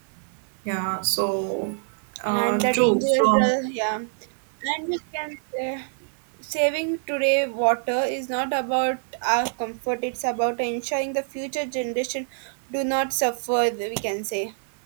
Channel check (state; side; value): silent; left; digital silence